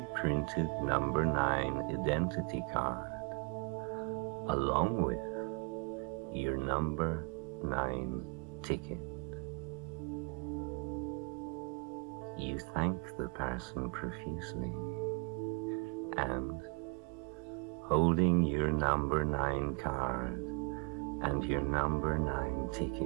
printed number 9 identity card, along with your number 9 ticket. You thank the person profusely, and holding your number 9 card and your number 9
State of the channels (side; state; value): left; quieter; 32.2 dB